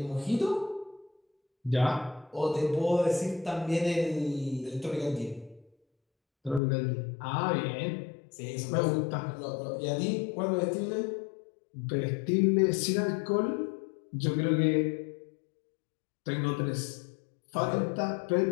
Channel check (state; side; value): drops out; right; at 6.6 s